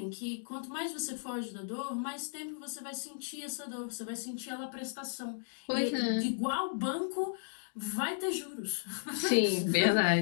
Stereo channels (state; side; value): silent; right; digital silence